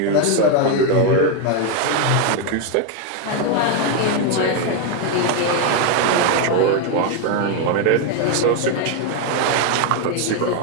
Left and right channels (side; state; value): both; different; correlation 0.01